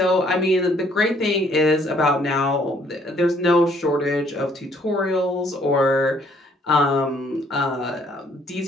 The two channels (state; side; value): normal; both; correlation 0.64